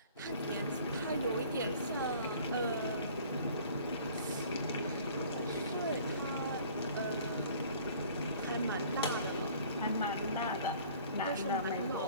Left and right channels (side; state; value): both; inverted; correlation -0.51